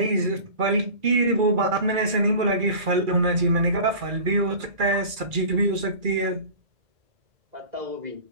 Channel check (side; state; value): left; late; 2.4 ms